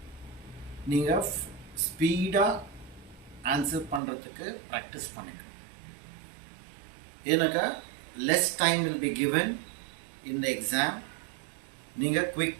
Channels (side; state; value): left; drops out; at 4.0 s